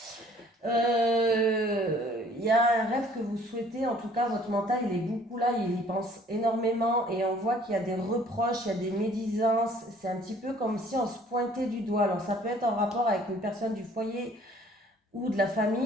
Il y a un rêve que vous souhaitez, en tout cas votre mental il est beaucoup là, il y pense énormément et on voit qu'il y a des reproches, il y a des médisances, c'est un petit peu comme si on se pointait du doigt. Alors ça peut être en rapport avec une personne du foyer ou de la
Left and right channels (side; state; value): both; normal; correlation 0.56